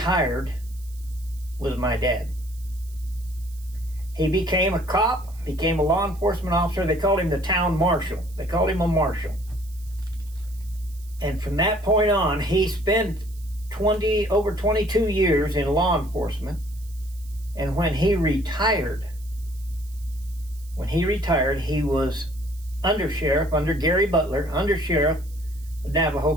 was my dad. He became a cop, became a law enforcement officer. They called him the town marshal. They called him a marshal. And from that point on, he spent over 22 years in law enforcement. And when he retired, he was undersheriff under Gary Butler, undersheriff of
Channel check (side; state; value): right; noise; hiss, 24 dB below the sound